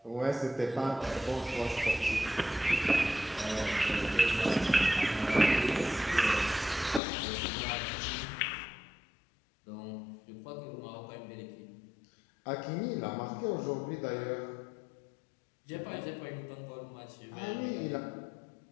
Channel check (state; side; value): drops out; right; at 7.0 s